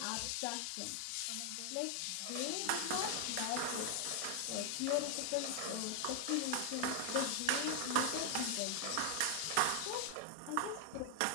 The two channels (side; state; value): both; different; correlation 0.00